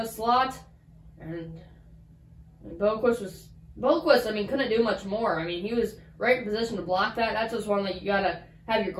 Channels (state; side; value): identical; both; correlation 1.00